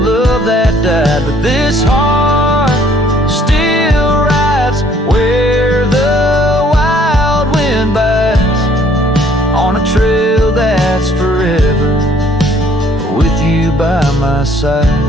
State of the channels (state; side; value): normal; both; correlation 0.61